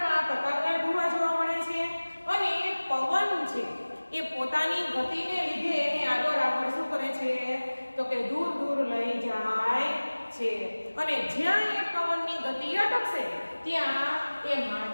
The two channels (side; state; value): both; inverted; correlation -1.00